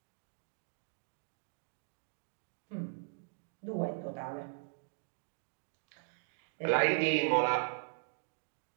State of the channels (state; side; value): silent; left; digital silence